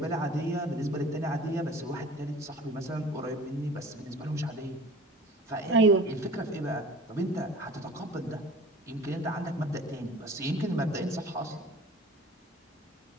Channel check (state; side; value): normal; both; correlation 0.44